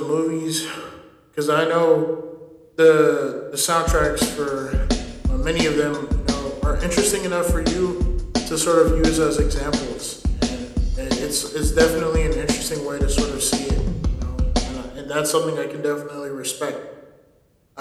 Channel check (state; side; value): identical; both; correlation 1.00